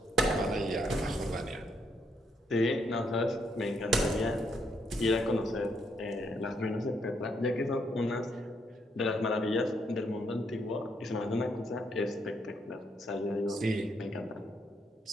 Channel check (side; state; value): both; normal; correlation 0.74